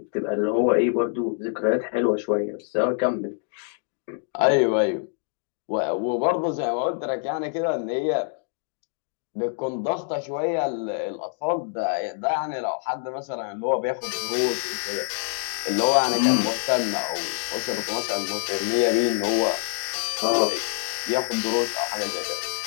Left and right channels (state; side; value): silent; right; digital silence